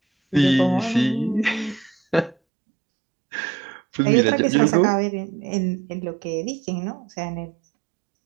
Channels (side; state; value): left; drops out; at 2.4 s